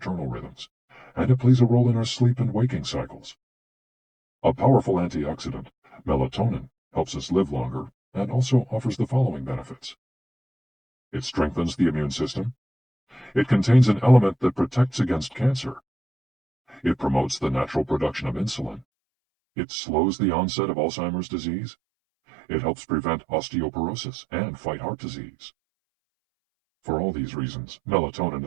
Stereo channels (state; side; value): drops out; left; at 18.9 s